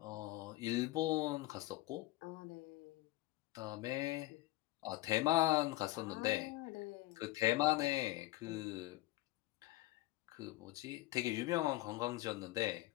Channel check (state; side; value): quieter; right; 18.2 dB